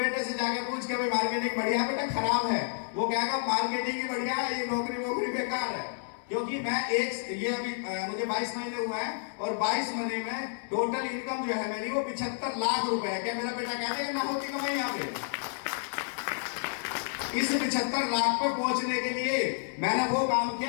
से जाके पूछ के भाई मार्केटिंग बढ़िया है बेटा खराब है? वो कहेगा मार्केटिंग ही बढ़िया है, ये नौकरी बेकार है। क्योंकि मैं ये अभी मुझे 22 महीने हुआ है, और 22 महीने में टोटल इनकम जो है मेरी वो 75 लाख रुपए है। क्या मेरा बेटा कहते हैं ना होती कमाई यहाँ पे? इस 75 लाख पर पहुंचने के लिए मैंने वो काम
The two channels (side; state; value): right; silent; digital silence